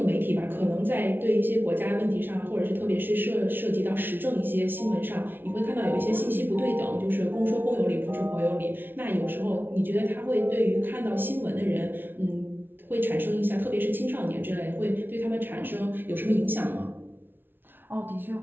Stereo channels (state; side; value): late; left; 0.10 ms